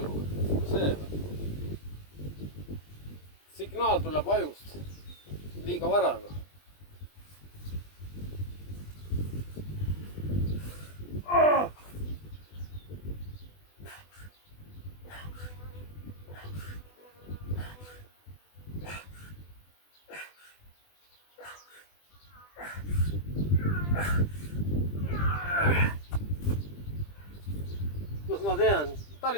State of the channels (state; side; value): late; right; 20 ms